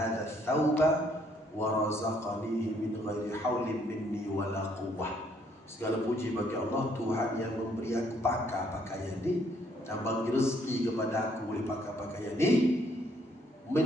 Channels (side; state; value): both; normal; correlation 0.67